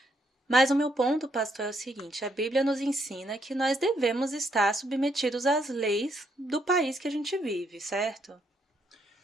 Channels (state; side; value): normal; both; correlation 0.74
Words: Mas o meu ponto, pastor, é o seguinte, a Bíblia nos ensina que nós devemos estar submetidos às leis do país que a gente vive, certo?